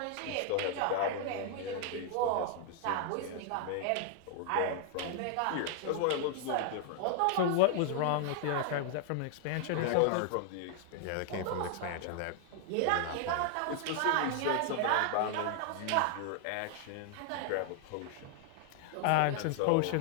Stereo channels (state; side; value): different; both; correlation 0.00